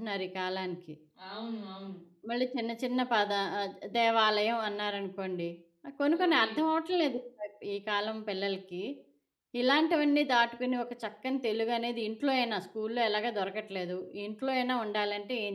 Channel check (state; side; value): identical; both; correlation 1.00